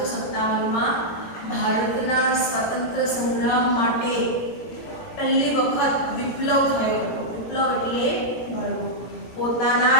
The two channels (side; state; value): right; late; 18 ms